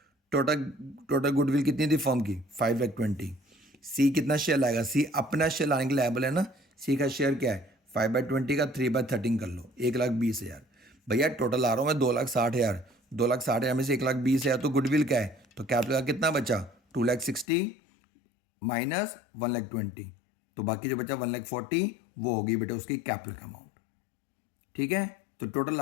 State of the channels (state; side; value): drops out; right; at 17.4 s